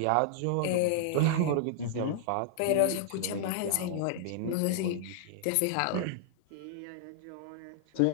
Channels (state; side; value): different; both; correlation -0.01